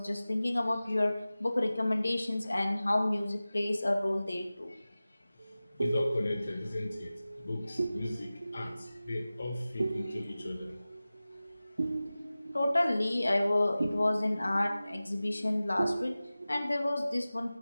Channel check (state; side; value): inverted; both; correlation -0.97